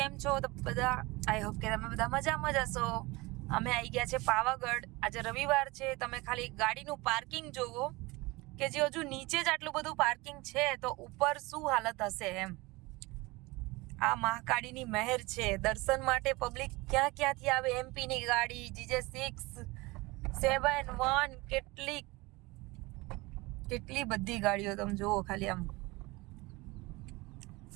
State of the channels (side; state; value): left; quieter; 22.8 dB